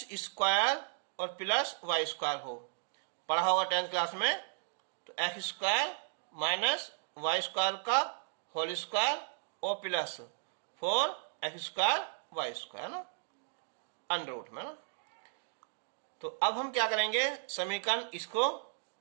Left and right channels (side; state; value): left; silent; digital silence